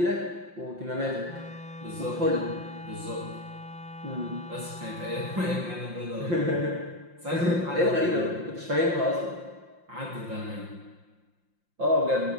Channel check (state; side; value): late; left; 5.7 ms